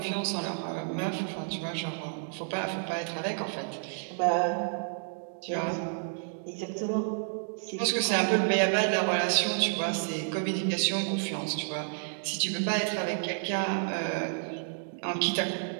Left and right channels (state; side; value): silent; left; digital silence